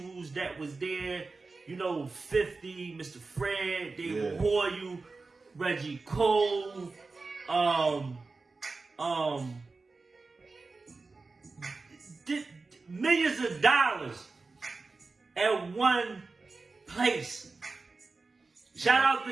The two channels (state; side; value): quieter; left; 3.9 dB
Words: that was there. You know, 50, Mr. Fred, David Hoyle, Reggie Cole, millions of dollars at one place. Shout out